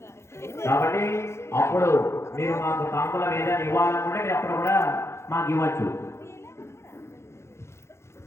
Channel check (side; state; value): right; late; 0.13 ms